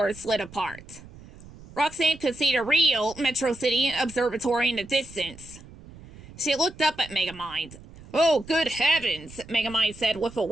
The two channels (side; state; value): right; noise; rumble, 19 dB below the sound